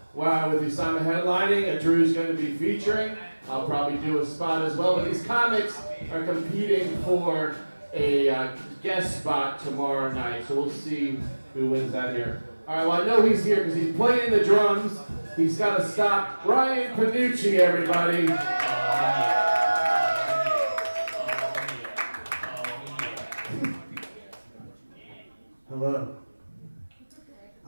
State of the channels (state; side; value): inverted; both; correlation -1.00